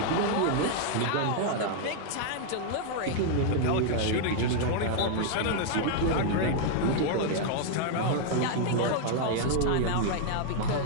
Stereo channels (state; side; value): different; both; correlation 0.00